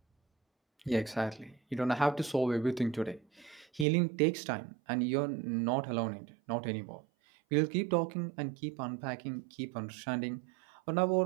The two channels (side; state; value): left; drops out; at 3.9 s